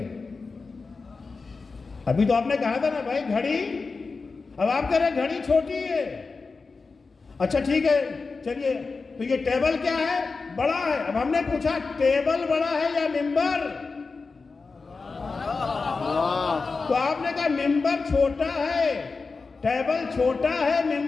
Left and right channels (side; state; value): right; quieter; 4.3 dB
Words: ابھی تو آپ نے کہا تھا نا بھائی گھڑی. اب آپ کہہ رہے گھڑی چھوٹی ہے. اچھا ٹھیک ہے، چلیے تو یہ ٹیبل کیا ہے؟ بڑا ہے. اب ہم نے پوچھا ٹیبل بڑا ہے یا ممبر؟ تو آپ نے کہا ممبر چھوٹا ہے، ٹیبل چھوٹا ہے،